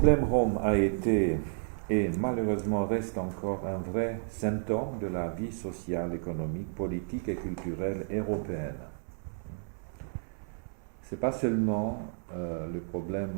Rome a été et malheureusement reste encore un vrai symptôme de la vie sociale, économique, politique et culturelle européenne. Ce n'est pas seulement le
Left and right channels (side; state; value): left; silent; 57 dB below the other